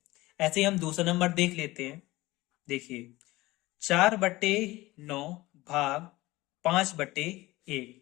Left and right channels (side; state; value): right; quieter; 19.4 dB